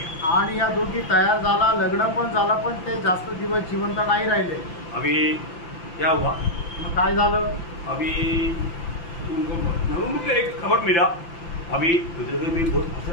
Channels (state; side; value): late; right; 5.9 ms